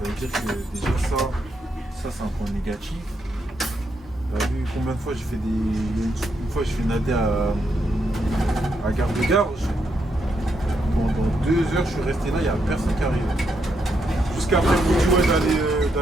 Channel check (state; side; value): normal; both; correlation 0.80